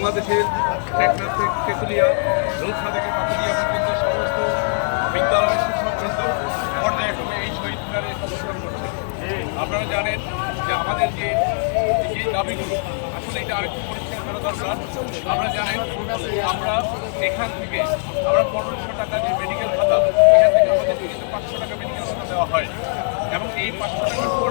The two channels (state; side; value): silent; right; digital silence